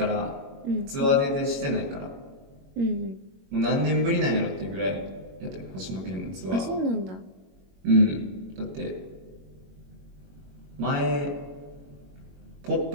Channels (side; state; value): left; late; 21 ms